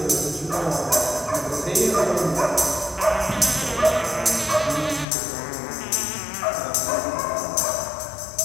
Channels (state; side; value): drops out; right; at 5.1 s